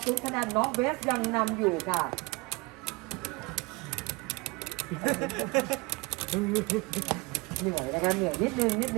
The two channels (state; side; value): quieter; left; 25.7 dB